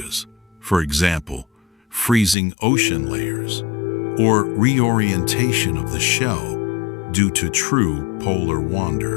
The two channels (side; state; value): right; drops out; at 2.4 s